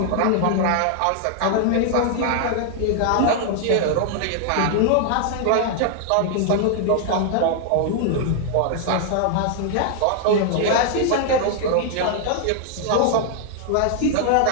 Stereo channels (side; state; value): both; different; correlation 0.00